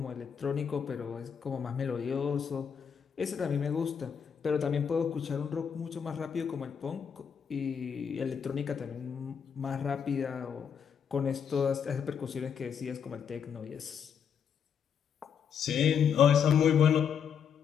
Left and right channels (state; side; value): quieter; right; 7.4 dB